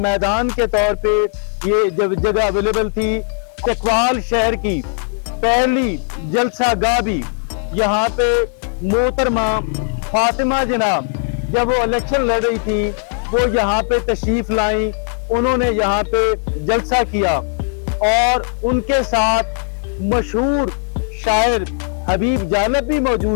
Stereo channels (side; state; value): right; silent; 67 dB below the other